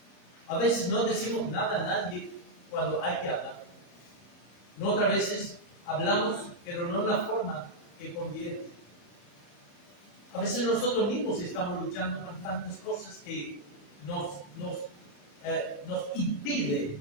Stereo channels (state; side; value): late; right; 34 ms